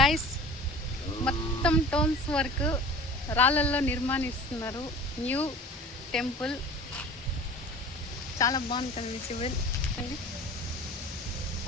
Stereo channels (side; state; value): both; normal; correlation 0.41